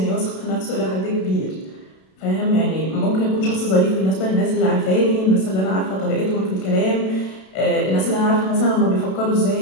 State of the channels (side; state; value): right; late; 32 ms